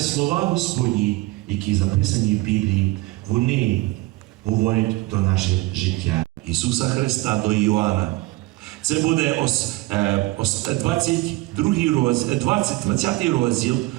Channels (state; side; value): quieter; left; 20.0 dB